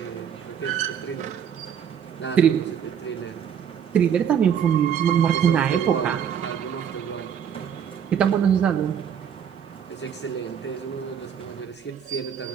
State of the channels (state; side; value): quieter; left; 8.3 dB